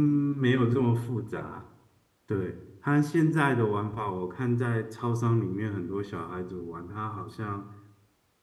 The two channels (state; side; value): identical; both; correlation 1.00